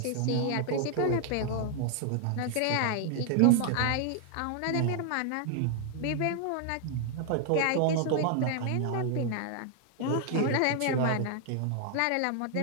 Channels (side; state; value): both; different; correlation 0.00